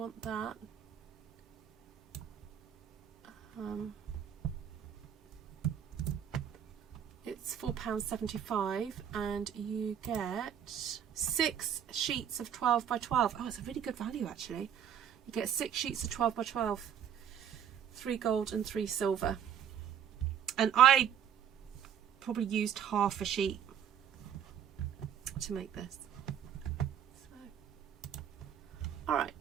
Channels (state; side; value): quieter; left; 9.0 dB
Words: that, it's £4.75 and you get 6 sheets of 12 by 12. Oh, it's a really good value actually. You get 6 sheets of 12 by 12, 3 gold and 3 silver. And I probably used half a sheet to make this. So, all